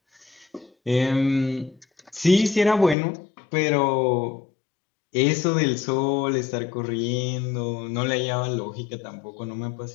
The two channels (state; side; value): drops out; right; at 3.0 s